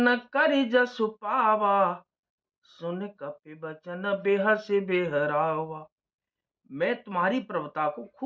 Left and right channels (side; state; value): both; identical; correlation 1.00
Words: कर जसु पावा, सुन कपि बचन बेहस बेहरावा। मैं तुम्हारी प्रभुता को